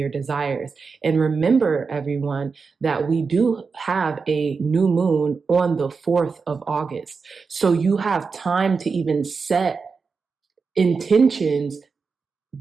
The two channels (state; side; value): quieter; left; 5.0 dB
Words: desires. And remember, everyone, that we do have a new moon on the 4th of August. So you have time to even set intentions